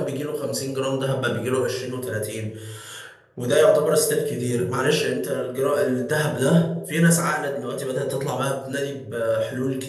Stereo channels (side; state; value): both; identical; correlation 1.00